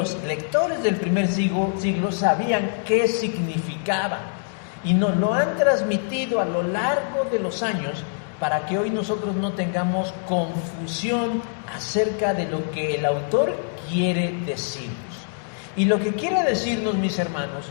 lectores del primer siglo sabían qué significaban, y nos lo han transmitido a lo largo de los años para que hoy nosotros no tengamos confusión acerca de lo que el autor quiere decirnos. Y lo que quiere decirnos, mis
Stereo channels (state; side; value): silent; right; digital silence